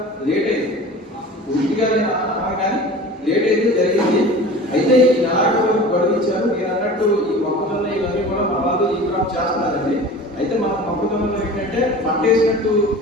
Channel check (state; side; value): normal; both; correlation 0.38